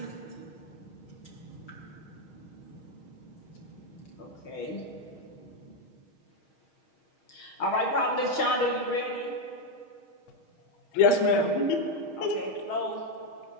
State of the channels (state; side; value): late; right; 6.4 ms